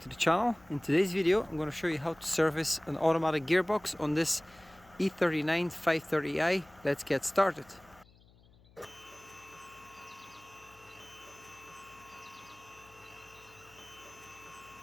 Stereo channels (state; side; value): noise; left; hum, 27 dB below the sound